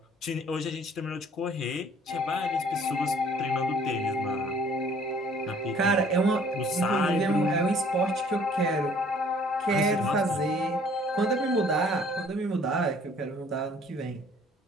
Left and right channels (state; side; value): normal; both; correlation 0.56